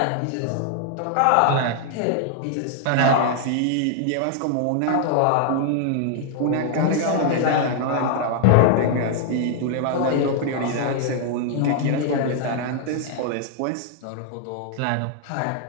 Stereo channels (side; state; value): both; different; correlation 0.00